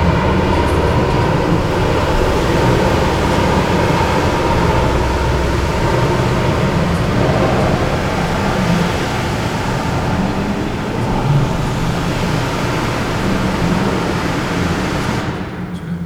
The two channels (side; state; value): both; identical; correlation 1.00